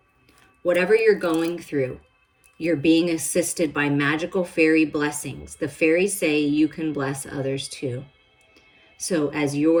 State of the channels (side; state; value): both; identical; correlation 1.00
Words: Whatever you're going through, you're being assisted by magical fairy blessings. The fairies say you can bless others too. So as